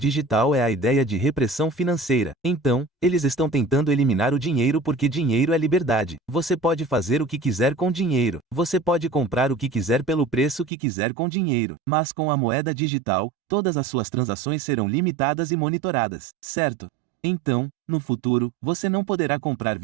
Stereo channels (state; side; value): drops out; left; at 10.7 s